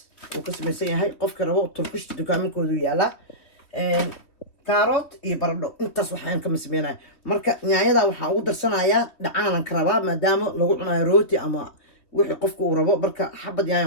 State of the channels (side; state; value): right; late; 3.4 ms